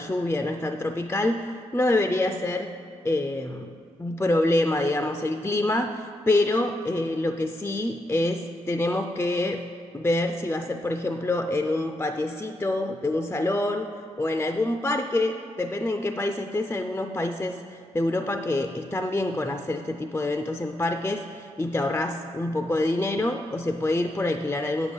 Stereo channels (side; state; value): both; normal; correlation 0.82